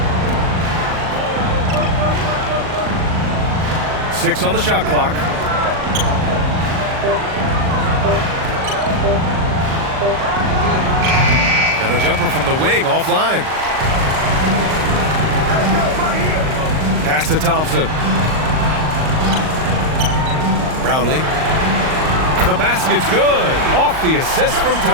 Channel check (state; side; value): late; left; 38 ms